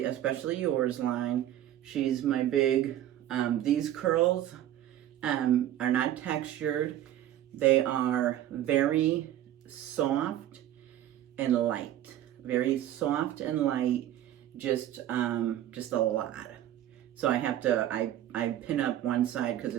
Especially Yours line. She's my big, these curls are not textured. They are very soft and light. Very soft and light, just a lot. So I have to, I pin up one side because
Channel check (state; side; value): quieter; left; 12.4 dB